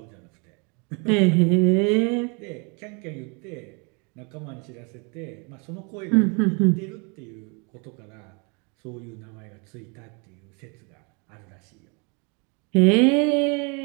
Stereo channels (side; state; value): left; quieter; 33.4 dB